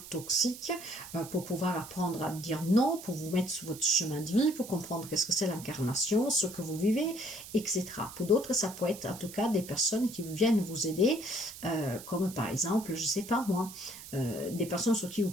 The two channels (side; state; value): right; noise; hiss, 14 dB below the sound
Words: toxiques pour pouvoir apprendre à dire non, pour vous mettre sur votre chemin de vie, pour comprendre qu'est-ce que c'est l'incarnation, ce que vous vivez, etc. Pour d'autres, ça peut être en tout cas des personnes qui viennent vous aider, comme par exemple, je ne sais pas moi, des personnes sur qui vous